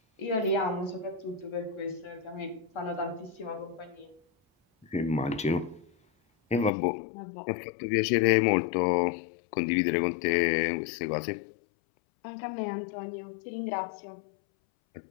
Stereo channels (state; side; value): drops out; right; at 6.7 s